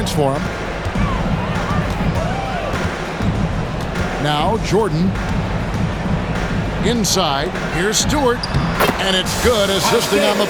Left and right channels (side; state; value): both; identical; correlation 1.00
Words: for them. Now Jordan. Inside. Here's Stewart. And it's good. Assisting on the